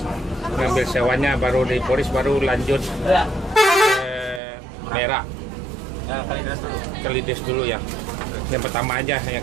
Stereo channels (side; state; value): left; drops out; at 4.4 s